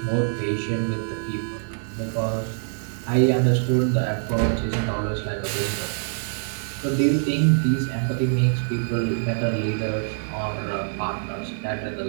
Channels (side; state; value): left; silent; digital silence